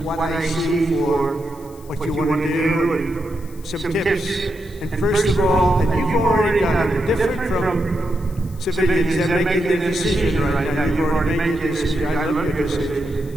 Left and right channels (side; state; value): left; noise; hiss, 24 dB below the sound